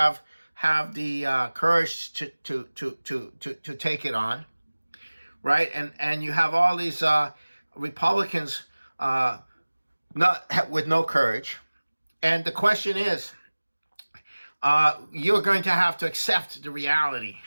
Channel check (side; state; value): both; inverted; correlation -1.00